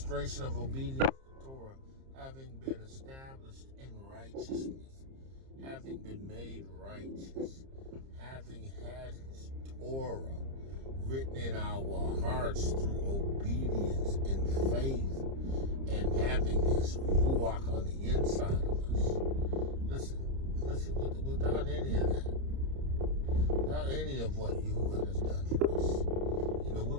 of obedience to Torah, having been established in righteousness, having been made righteous, having had His Torah written in our hearts through obedience and faith, and having His Ruach on the inside of us. Listen, without any of that, without any of what Yahuwah has done for us, we're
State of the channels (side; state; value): left; late; 30 ms